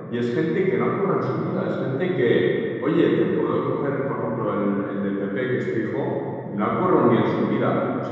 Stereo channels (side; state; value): both; identical; correlation 1.00